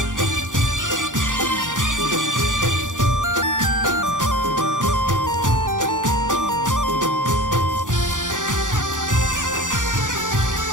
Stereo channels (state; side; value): late; left; 0.87 ms